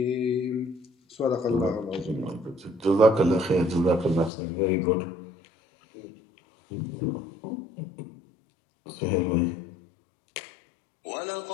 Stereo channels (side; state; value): right; drops out; at 4.3 s